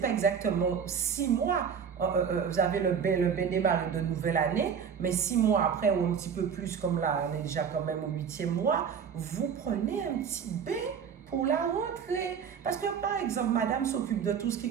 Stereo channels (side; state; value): left; quieter; 7.1 dB